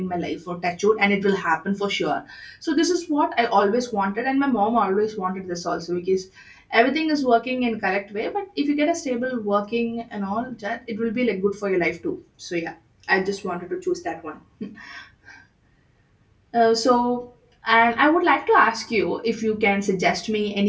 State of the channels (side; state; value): both; identical; correlation 1.00